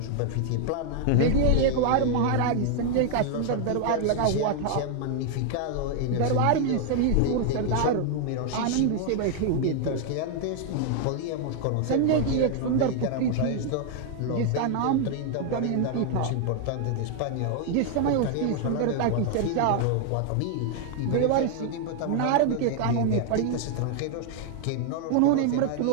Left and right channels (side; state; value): both; different; correlation 0.00